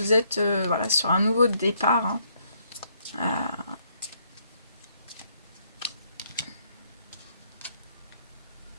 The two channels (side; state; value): both; inverted; correlation -0.71